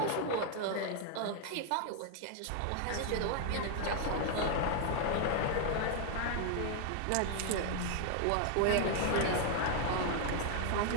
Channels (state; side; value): different; both; correlation 0.00